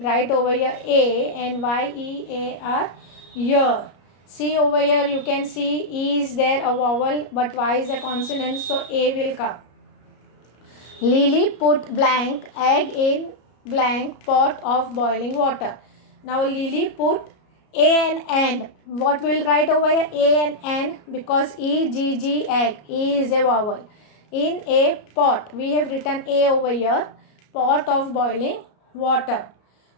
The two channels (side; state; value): right; late; 33 ms